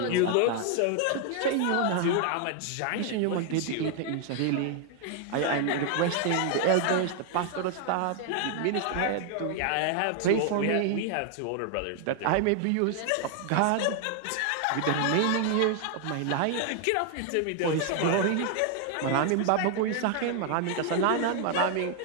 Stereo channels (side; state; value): both; different; correlation 0.00